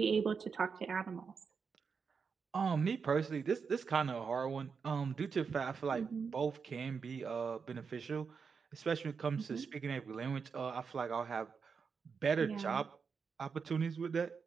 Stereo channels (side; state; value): left; quieter; 5.7 dB